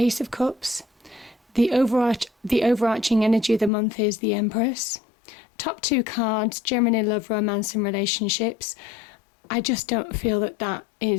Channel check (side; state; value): right; drops out; at 3.7 s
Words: of Cups. The overarching energy of the month is the Empress. Top two cards, generally love, romance and relationships. I just don't feel that